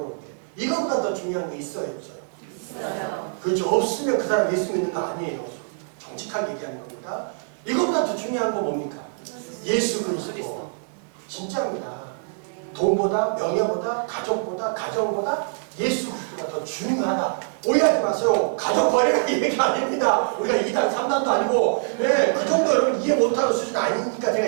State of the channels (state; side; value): silent; left; digital silence